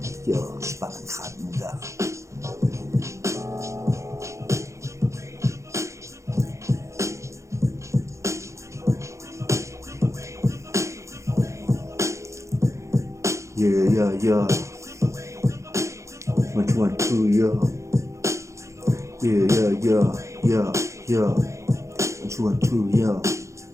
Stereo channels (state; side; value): late; left; 0.14 ms